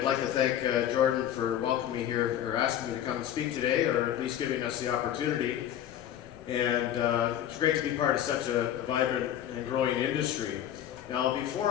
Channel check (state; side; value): quieter; right; 10.9 dB